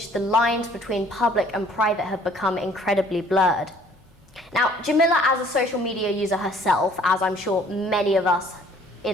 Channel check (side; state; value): both; normal; correlation 0.57